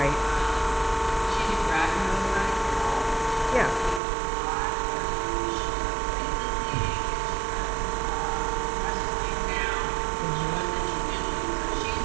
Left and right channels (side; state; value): left; drops out; at 4.0 s